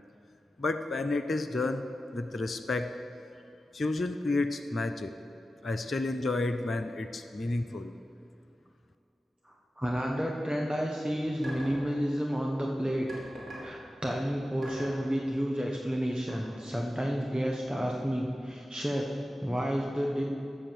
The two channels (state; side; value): normal; both; correlation 0.93